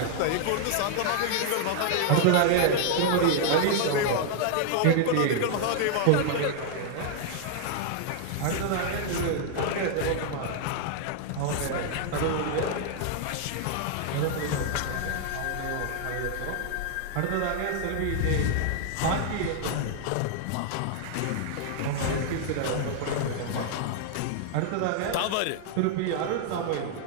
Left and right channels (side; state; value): both; different; correlation 0.00